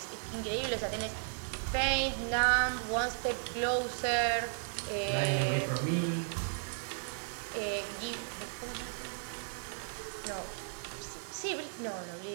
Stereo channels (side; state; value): left; silent; 54 dB below the other